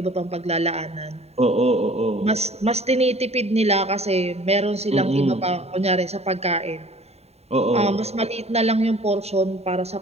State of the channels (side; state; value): left; late; 0.30 ms